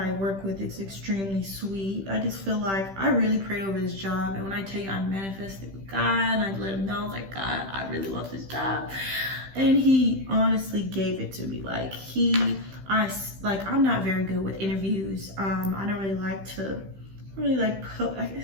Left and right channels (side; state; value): left; late; 15 ms